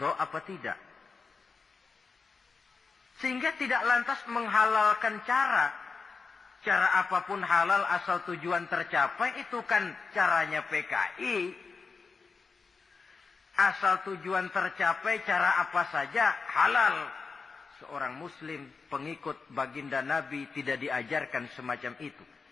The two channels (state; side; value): quieter; right; 4.7 dB